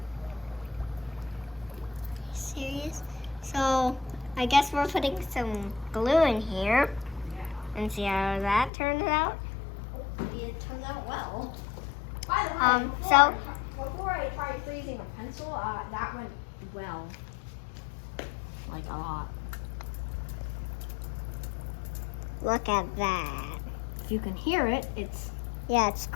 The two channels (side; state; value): right; drops out; at 8.7 s